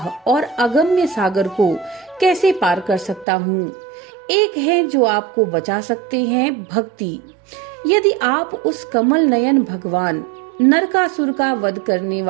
और अगम्य सागर को कैसे पार कर सकता हूँ। एक है जो आपको बचा सकते हैं, भक्ति। यदि आप उस कमल नयन भगवान नरकासुर का वध करने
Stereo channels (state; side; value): drops out; left; at 3.2 s